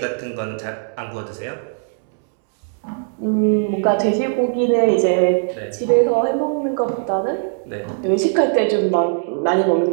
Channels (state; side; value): silent; left; 66 dB below the other